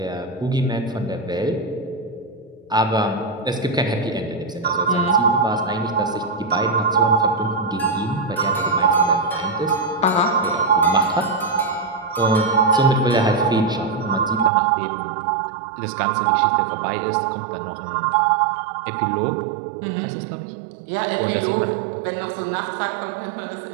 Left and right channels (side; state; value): left; drops out; at 14.5 s